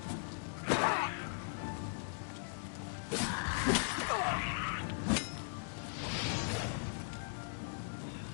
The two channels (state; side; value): silent; right; digital silence